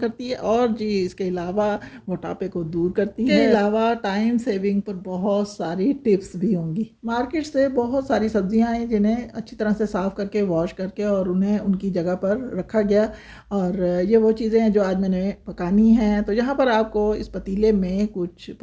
है और जी इसके अलावा मोटापे को दूर करती है। इसके अलावा टाइम सेविंग पर बहुत सारी टिप्स भी होंगी। मार्केट से बहुत सारी सब्जियां हैं जिन्हें अच्छी तरह से साफ़ करके वॉश करके और उन्हें उनकी जगह पर रखा गया और ये वो चीज़ें हैं जो आज मैंने पकानी हैं। तो यहाँ पर आपको इस पतीले में कुछ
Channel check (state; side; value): identical; both; correlation 1.00